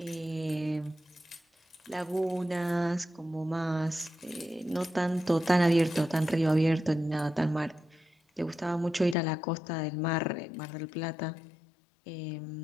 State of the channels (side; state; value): right; drops out; at 9.2 s